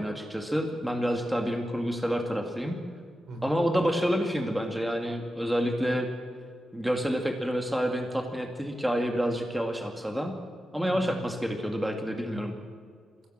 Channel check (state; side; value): normal; both; correlation 0.91